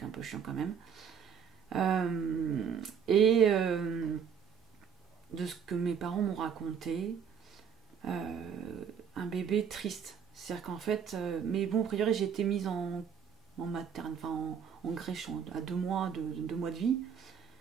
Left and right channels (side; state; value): left; quieter; 7.4 dB